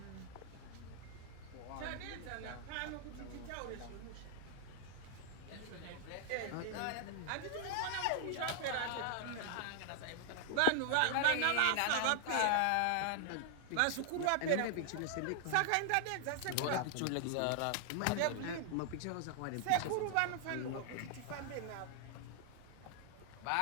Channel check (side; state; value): both; different; correlation 0.00